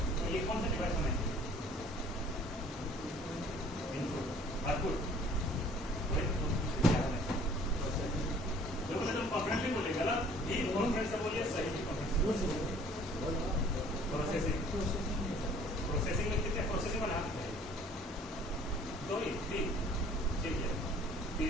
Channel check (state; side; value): normal; both; correlation 0.53